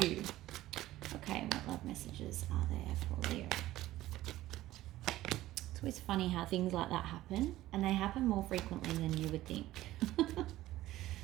Okay, what love messages are there for Leo? It's always funny how things like that happen, and they happen more frequently than you would think.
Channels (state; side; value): quieter; left; 15.6 dB